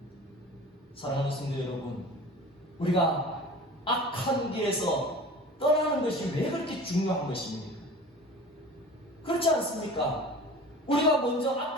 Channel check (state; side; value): normal; both; correlation 0.40